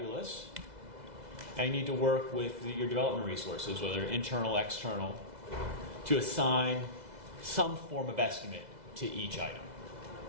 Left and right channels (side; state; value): left; late; 2.0 ms